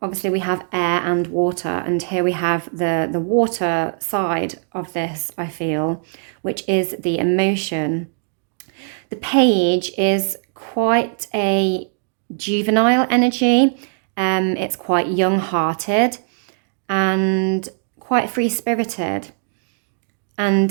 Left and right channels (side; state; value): left; silent; 62 dB below the other